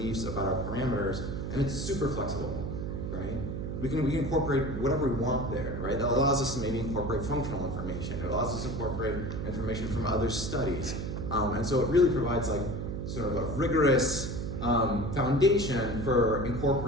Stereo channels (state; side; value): noise; right; hum, 4 dB below the sound